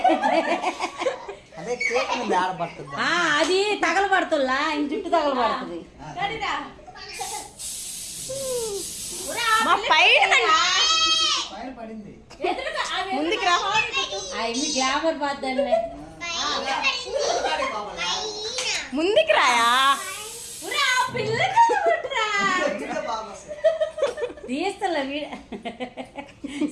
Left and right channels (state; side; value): identical; both; correlation 1.00